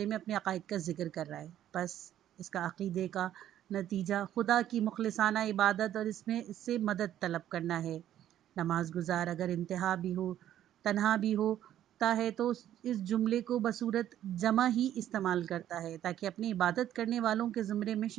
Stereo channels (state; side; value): quieter; left; 11.6 dB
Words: میں اپنے عقائد کا ذکر کر رہا ہے، بس اس کا عقیدے کا نتیجہ خدا کی مخلصانہ عبادت اور اس سے مدد طلب کرنا ہے۔ نماز گزار اگر انتہا بھی ہو، تنہا بھی ہوتا ہے تو اس جملے کو بصورت جمع ہی استعمال کرتا ہے، تاکہ اپنی عبادت کرنے والوں کے زمرے میں